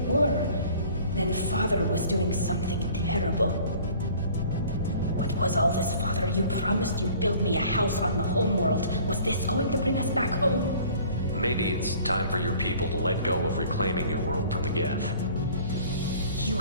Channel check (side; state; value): both; inverted; correlation -0.50